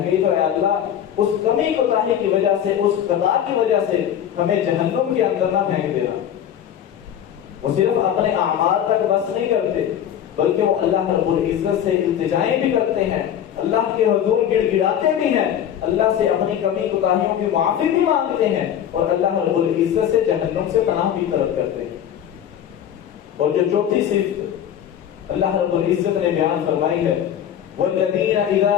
گئی تو اے اللہ اس کمی کوتاہی کی وجہ سے اس خطا کی وجہ سے ہمیں جہنم کے اندر نہ پھینک دینا. وہ صرف اپنے اعمال تک بس نہیں کرتے بلکہ وہ اللہ رب العزت سے التجائیں بھی کرتے ہیں اللہ کے حضور گڑ گڑاتے بھی ہیں اللہ سے اپنی کمی کوتاہیوں کی معافی بھی مانگتے ہیں اور اللہ رب العزت سے جہنم سے پناہ بھی طلب کرتے ہیں. اور جو چوتھی صفت اللہ رب العزت نے بیان فرمائی ہے والذین اذا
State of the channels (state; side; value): quieter; right; 9.9 dB